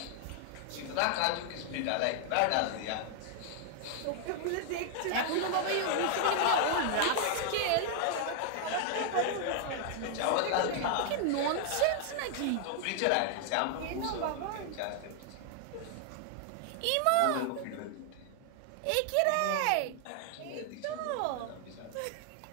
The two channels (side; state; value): both; different; correlation 0.00